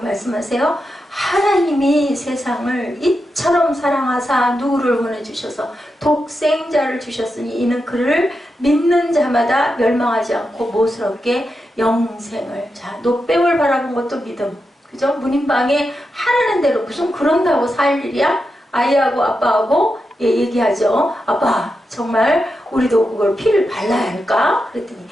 하나님이 세상을 이처럼 사랑하사 누구를 보내주셔서 독생자를 주셨으니 이는 그를 믿는 자마다 멸망하지 않고 무엇스럽게 영생을. 자, 노뱀을 바라본 것도 믿음. 그죠? 문인방에 하라는 대로 무슨 그런다고 살 일이야? 아이하고 아빠하고 얘기하죠. 아빠 정말 우리도 그걸 피를 발라야 할까? 그랬더니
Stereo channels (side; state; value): both; normal; correlation 0.88